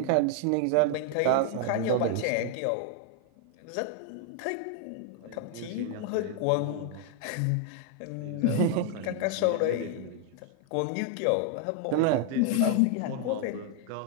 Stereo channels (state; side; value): different; both; correlation 0.00